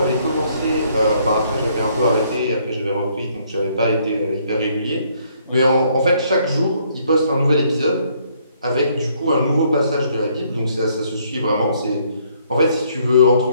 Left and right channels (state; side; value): inverted; both; correlation -0.67